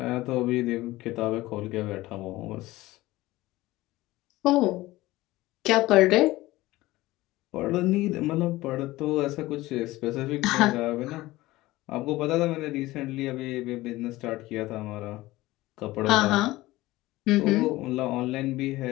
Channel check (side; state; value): right; quieter; 18.3 dB